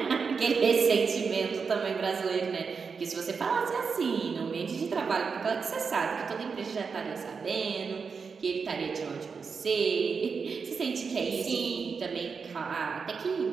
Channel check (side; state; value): left; quieter; 5.4 dB